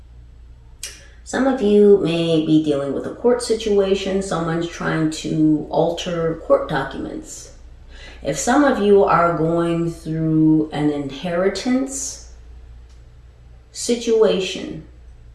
Some of you may be dealing with a court situation. Someone's trying to alter court documents. If some of you are going through an inheritance situation,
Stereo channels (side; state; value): both; identical; correlation 1.00